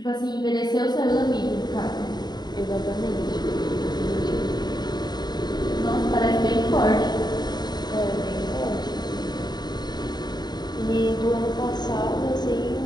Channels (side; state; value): right; late; 0.20 ms